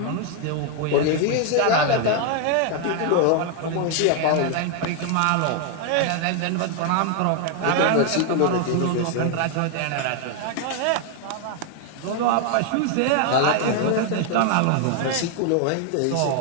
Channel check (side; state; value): both; different; correlation 0.00